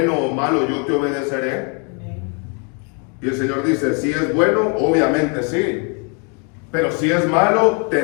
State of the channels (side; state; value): right; quieter; 36.9 dB